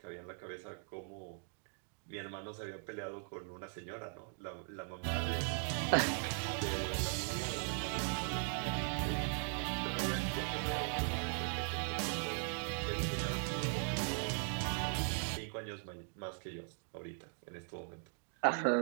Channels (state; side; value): silent; left; 51 dB below the other